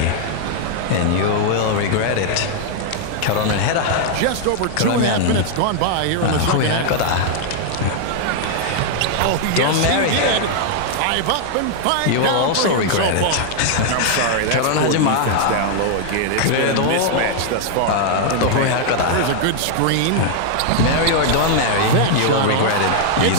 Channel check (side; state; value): both; different; correlation 0.00